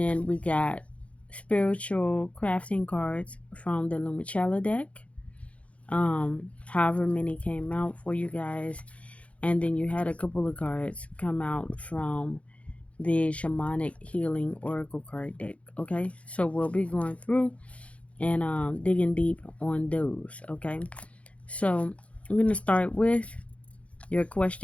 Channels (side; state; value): right; late; 0.064 ms